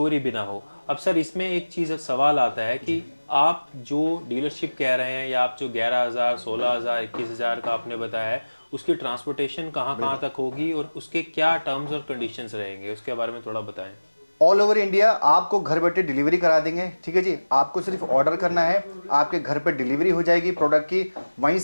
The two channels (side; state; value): both; inverted; correlation -1.00